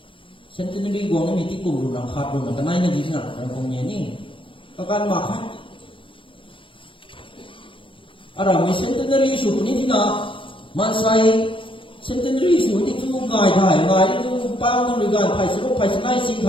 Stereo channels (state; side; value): late; right; 0.25 ms